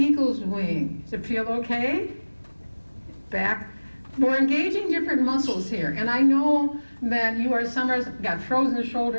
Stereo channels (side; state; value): both; inverted; correlation -1.00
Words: wing. Does it feel okay? Back. We're engaging different muscles here, and I know that some are got frozen